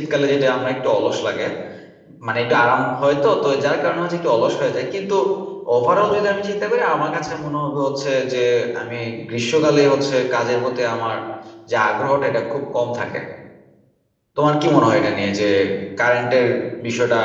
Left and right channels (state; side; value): identical; both; correlation 1.00